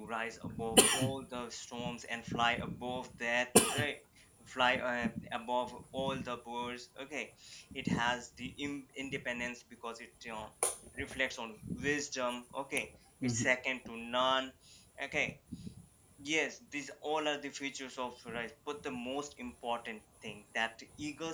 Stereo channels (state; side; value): identical; both; correlation 1.00